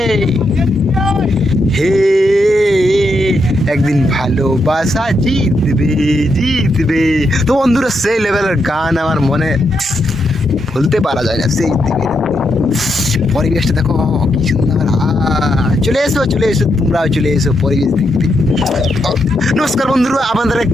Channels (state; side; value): normal; both; correlation 0.81